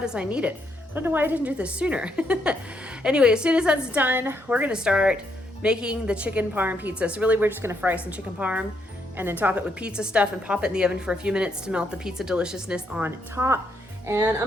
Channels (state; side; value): normal; both; correlation 0.76